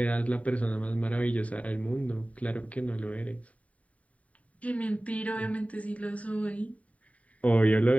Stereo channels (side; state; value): right; late; 0.068 ms